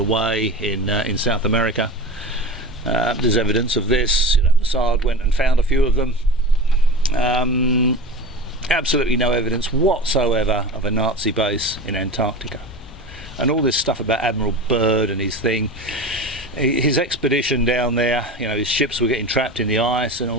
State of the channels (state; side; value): normal; both; correlation 0.32